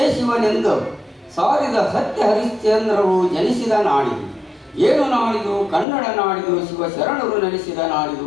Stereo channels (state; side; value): drops out; right; at 5.9 s